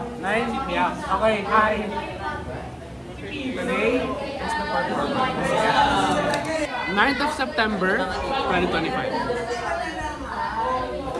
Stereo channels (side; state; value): both; identical; correlation 1.00